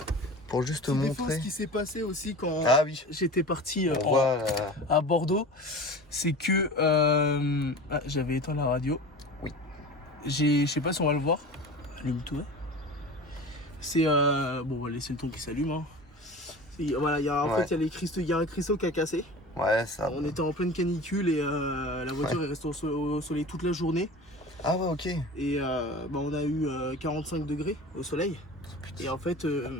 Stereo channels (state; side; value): normal; both; correlation 0.35